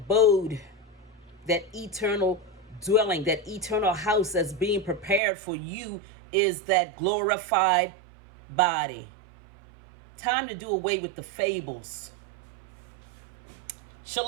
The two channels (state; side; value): drops out; left; at 5.2 s